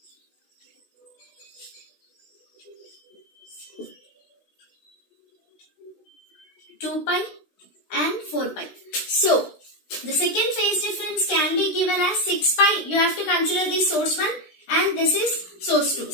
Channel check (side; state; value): right; late; 16 ms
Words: 2 pi and 4 pi. So the second phase difference can be given as 6 pi. You have to consider this source 1 and this is source 2.